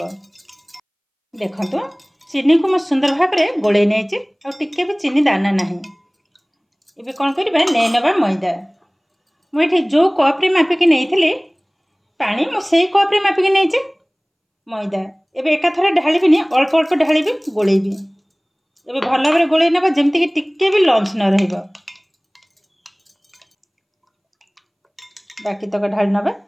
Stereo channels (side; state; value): both; identical; correlation 1.00